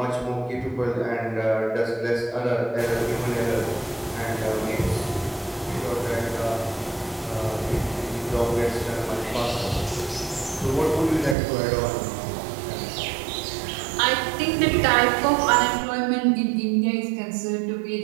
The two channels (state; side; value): drops out; left; at 11.4 s